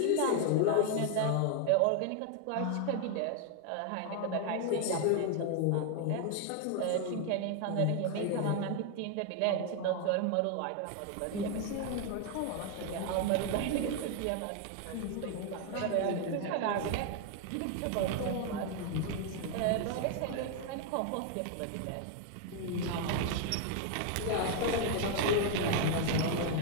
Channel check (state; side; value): different; both; correlation 0.00